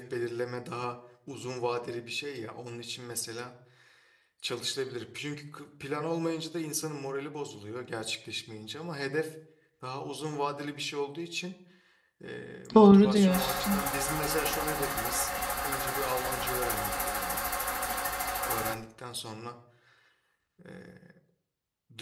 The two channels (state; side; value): identical; both; correlation 1.00